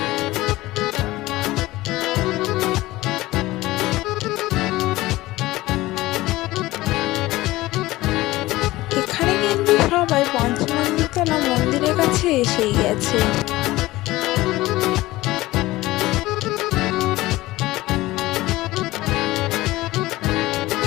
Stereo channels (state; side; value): quieter; right; 18.1 dB